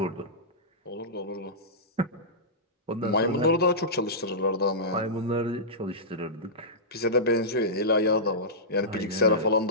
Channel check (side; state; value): both; normal; correlation -0.15